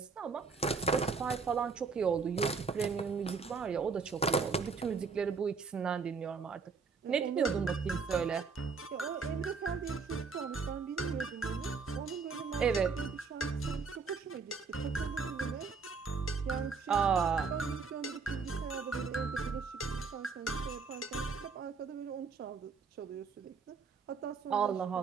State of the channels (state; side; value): quieter; left; 5.1 dB